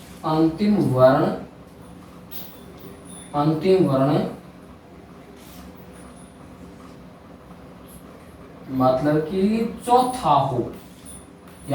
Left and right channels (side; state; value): both; identical; correlation 1.00